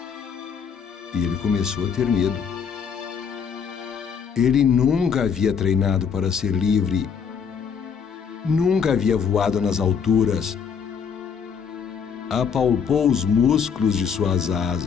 E ele começou a ter medo. Ele nunca havia treinado para ser livre, nunca havia voado nas alturas. Apalpou os músculos de suas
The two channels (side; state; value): right; quieter; 6.6 dB